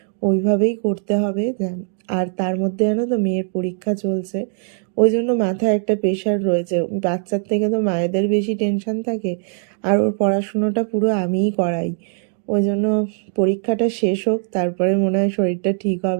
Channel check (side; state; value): left; silent; 55 dB below the other